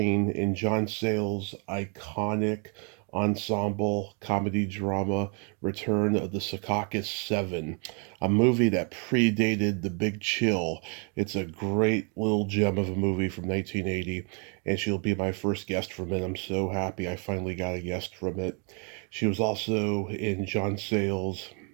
in John Sayles' iconic ensemble comedy drama Return of the Secaucus 7, a movie that predated The Big Chill. It's a great little gem of a movie from 1980, and she'll be my first guest from it. I'm so happy I finally got a guest from it. She was also in John Sayles'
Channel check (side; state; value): left; quieter; 37.7 dB